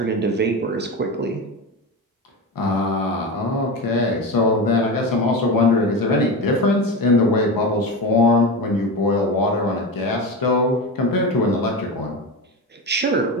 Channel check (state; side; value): normal; both; correlation 0.22